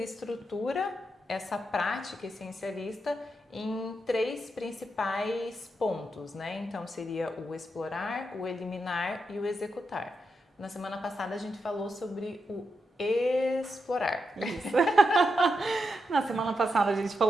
estrutura essa prática essencialista em 3 principais pontos, né? Então seria o explorar, o eliminar e o executar. Na semana passada a gente falou sobre o explorar. Isso. Na semana passada a gente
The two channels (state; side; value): normal; both; correlation 0.85